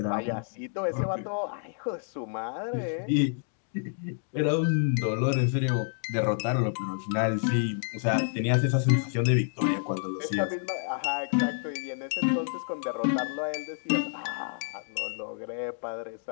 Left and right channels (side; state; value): right; silent; digital silence